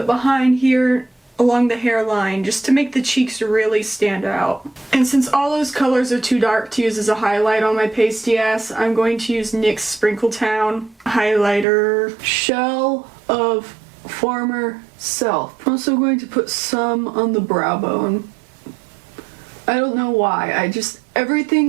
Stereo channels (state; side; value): drops out; left; at 11.7 s